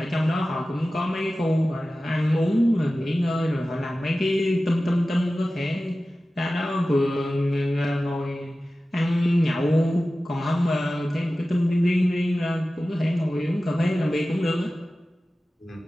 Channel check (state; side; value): normal; both; correlation 0.95